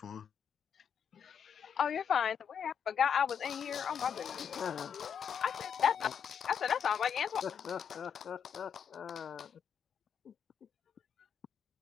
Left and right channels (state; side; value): quieter; right; 7.6 dB